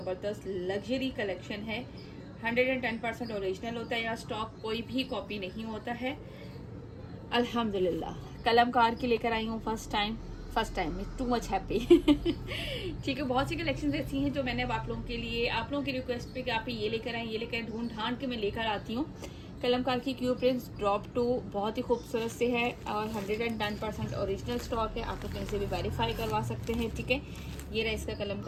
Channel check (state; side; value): identical; both; correlation 1.00